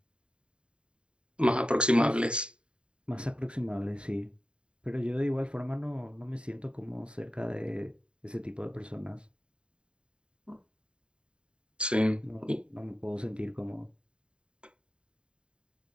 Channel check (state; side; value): late; left; 0.052 ms